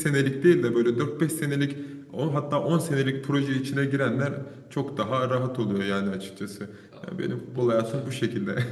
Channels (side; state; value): both; identical; correlation 1.00